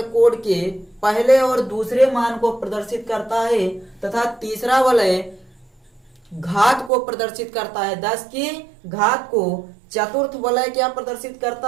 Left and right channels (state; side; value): drops out; left; at 6.9 s